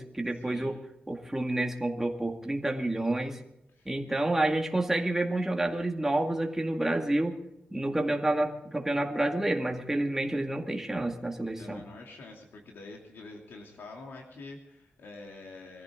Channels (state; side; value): normal; both; correlation 0.95